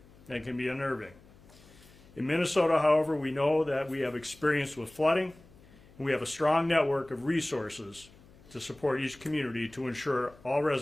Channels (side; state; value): left; noise; hum, 25 dB below the sound